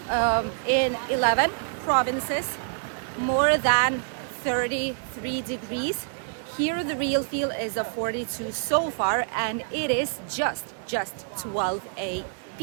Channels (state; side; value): silent; left; digital silence